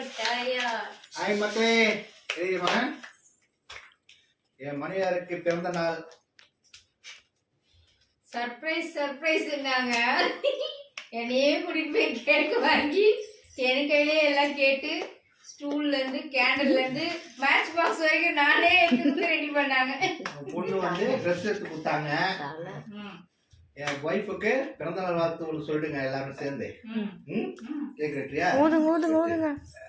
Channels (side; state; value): both; identical; correlation 1.00